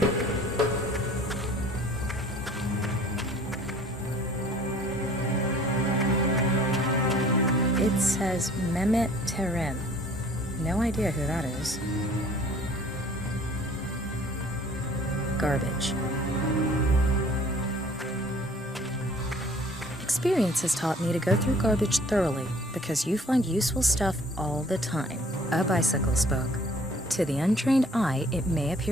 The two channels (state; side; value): normal; both; correlation 0.53